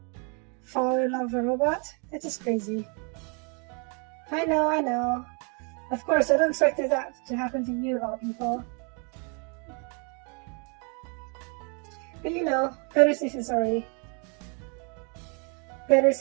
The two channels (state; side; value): quieter; left; 36.6 dB